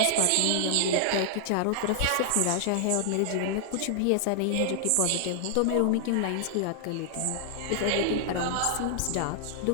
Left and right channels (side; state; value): both; different; correlation -0.01